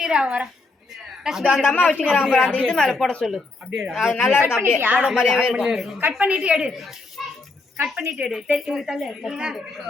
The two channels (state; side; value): quieter; right; 3.5 dB